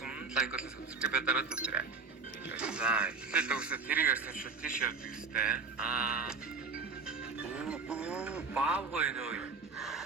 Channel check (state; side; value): quieter; left; 4.5 dB